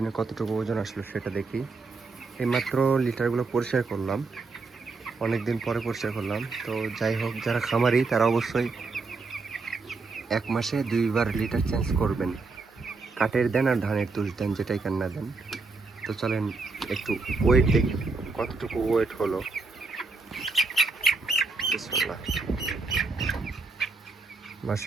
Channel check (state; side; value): quieter; left; 4.0 dB